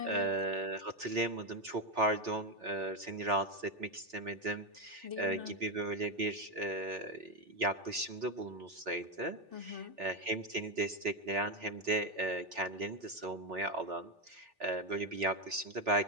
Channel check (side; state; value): left; late; 3.7 ms